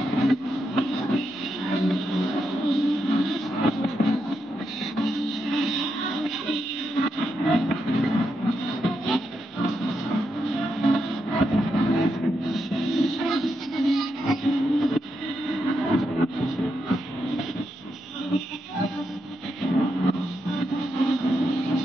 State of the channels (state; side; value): normal; both; correlation 0.83